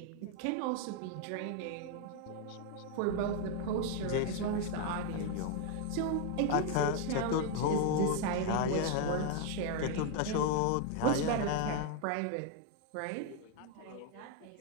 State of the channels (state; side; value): different; both; correlation 0.01